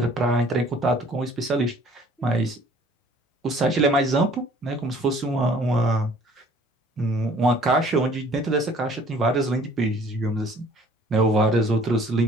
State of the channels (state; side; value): normal; both; correlation 0.55